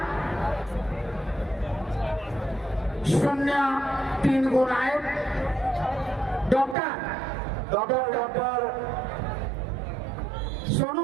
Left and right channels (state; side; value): drops out; left; at 6.8 s